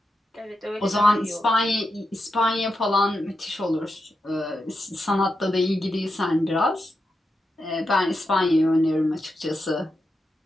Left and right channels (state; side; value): normal; both; correlation 0.87